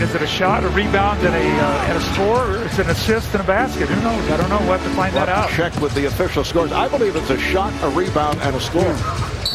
is it a shot, a rebound, and a score, or is it an assist and a basket? Who knows? I don't know. We'll have to find that out. Check with the official scores. I believe it's a shot, a rebound, and a score.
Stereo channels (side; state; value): both; identical; correlation 1.00